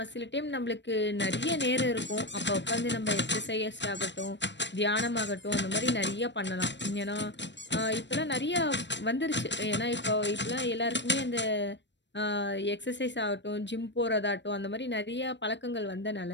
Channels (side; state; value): right; late; 0.52 ms